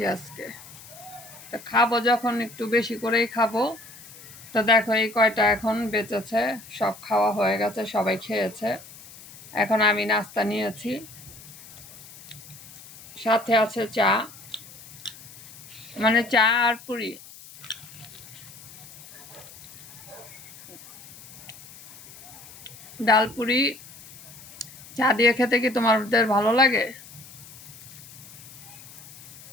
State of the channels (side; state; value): left; noise; hiss, 18 dB below the sound